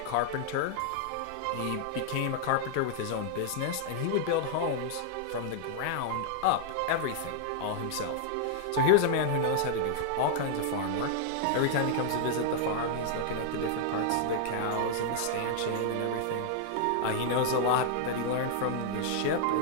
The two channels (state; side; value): different; both; correlation -0.01